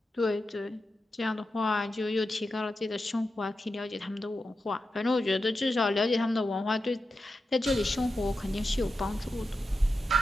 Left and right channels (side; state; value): both; normal; correlation 0.90